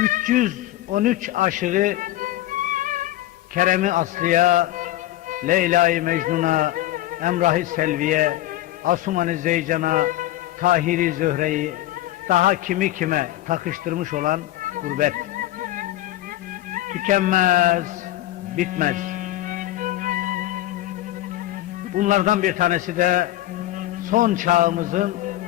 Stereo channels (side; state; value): right; quieter; 15.1 dB